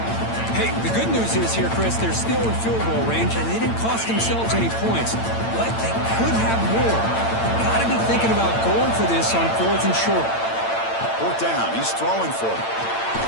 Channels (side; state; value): right; late; 8.9 ms